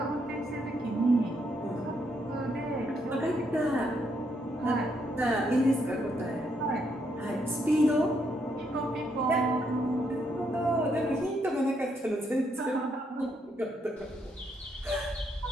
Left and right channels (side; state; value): both; normal; correlation 0.76